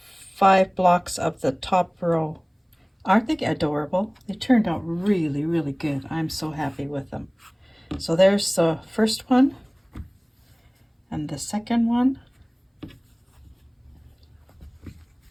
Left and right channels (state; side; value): identical; both; correlation 1.00